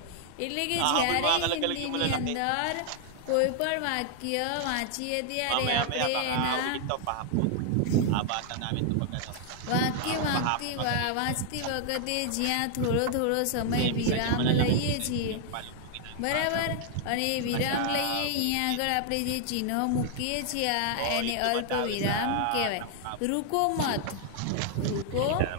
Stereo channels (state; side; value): different; both; correlation 0.00